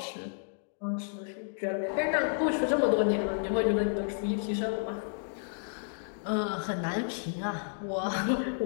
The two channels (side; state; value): right; silent; digital silence